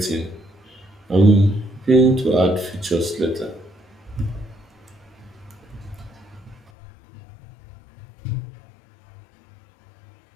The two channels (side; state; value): right; drops out; at 6.7 s